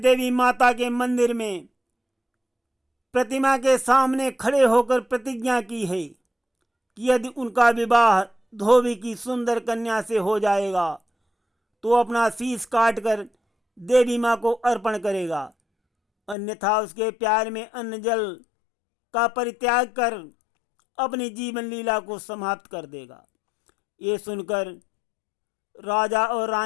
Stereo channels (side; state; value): right; drops out; at 16.4 s